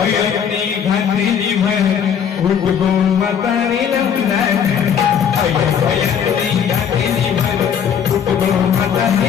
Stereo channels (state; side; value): quieter; right; 7.9 dB